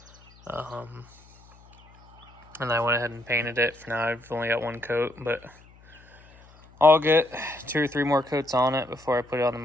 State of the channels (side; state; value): left; noise; hum, 26 dB below the sound